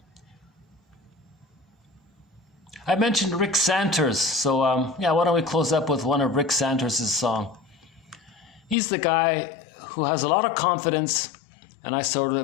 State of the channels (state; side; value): drops out; right; at 8.8 s